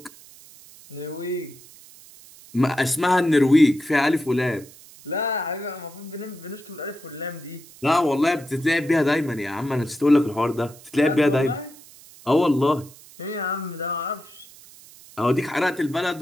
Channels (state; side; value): noise; right; hiss, 22 dB below the sound